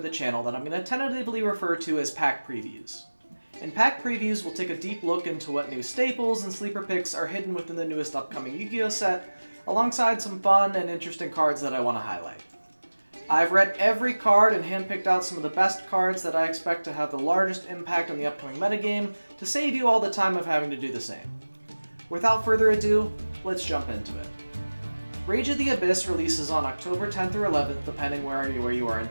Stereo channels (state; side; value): inverted; both; correlation -1.00